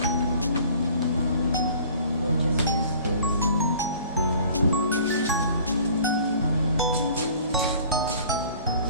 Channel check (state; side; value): inverted; both; correlation -0.50